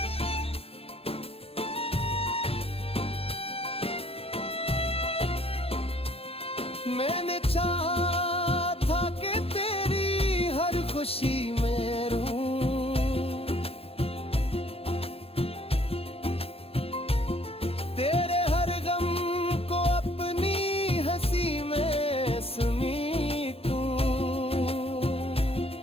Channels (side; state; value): right; late; 0.28 ms